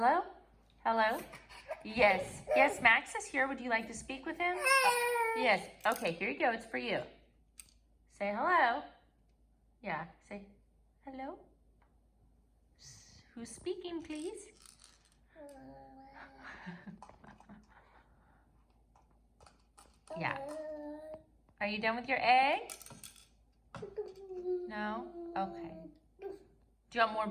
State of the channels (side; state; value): both; identical; correlation 1.00